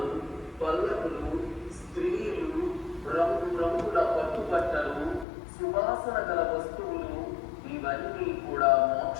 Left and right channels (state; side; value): drops out; right; at 5.2 s